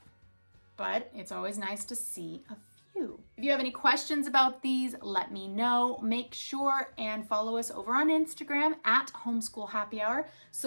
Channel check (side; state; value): both; inverted; correlation -1.00